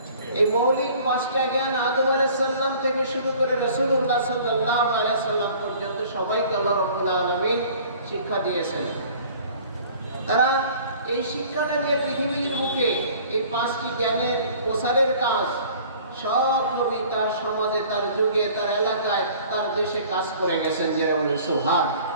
এই মৌলিক 5টা জ্ঞান আদম আলাইহিস সালাম থেকে শুরু করে রাসূলুল্লাহ সাল্লাল্লাহু আলাইহি সাল্লাম পর্যন্ত সবাইকে আল্লাহ রাব্বুল আলামিন শিক্ষা দিয়েছেন। তারা এই শিক্ষাটা নিয়ে পৃথিবীর বুকে এই 5টি জ্ঞানের প্রসারের কাজ সব নবী তার সমাজে, তার যুগে, তার এলাকায়, তার দেশে কাজ করে গেছেন। যেমন সুবহান।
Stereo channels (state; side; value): inverted; both; correlation -0.50